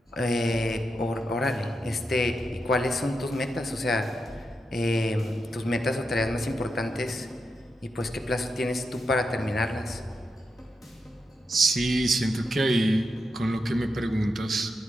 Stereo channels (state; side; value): normal; both; correlation 0.86